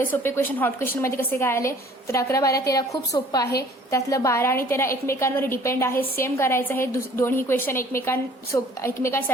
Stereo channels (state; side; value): normal; both; correlation 0.53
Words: सोपे क्वेश्चन हॉट क्वेश्चनमध्ये कसे काय आले, तर 11 12 13 खूप सोपं आहे. त्यातलं 12 आणि 13 एकमेकांवर डिपेंड आहे, सेम करायचं आहे. दोन्ही क्वेश्चन